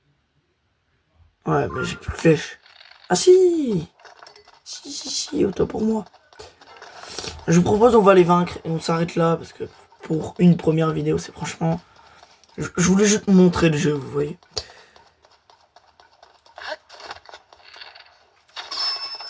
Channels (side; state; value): both; identical; correlation 1.00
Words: Ouais, mais j'ai plus de flèches. Ah si! Si, autant pour moi. Je vous propose, on va les vaincre et on s'arrête là parce que pour une première vidéo, c'est franchement. Je voulais juste montrer le jeu, vous voyez.